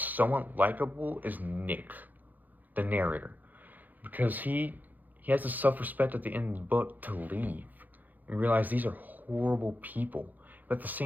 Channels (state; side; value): late; left; 0.084 ms